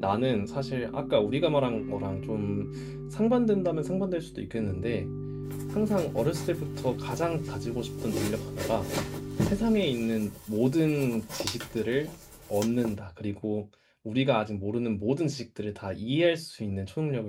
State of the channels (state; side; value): identical; both; correlation 1.00